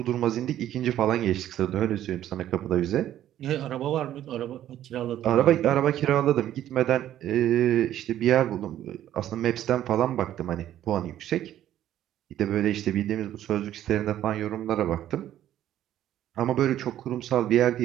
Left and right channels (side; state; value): left; quieter; 12.1 dB